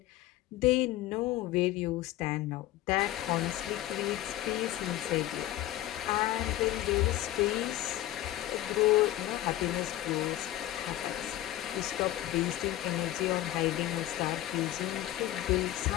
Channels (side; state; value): right; quieter; 14.6 dB